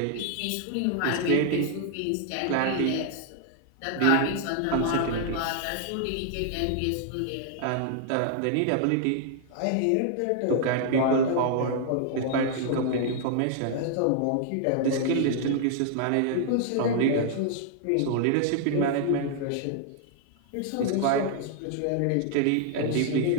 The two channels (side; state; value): both; different; correlation 0.00